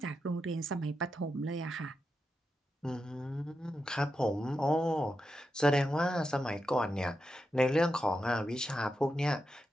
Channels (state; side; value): normal; both; correlation 0.87